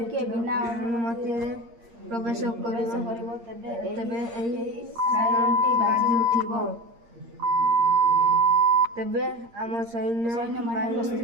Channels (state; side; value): late; left; 8.6 ms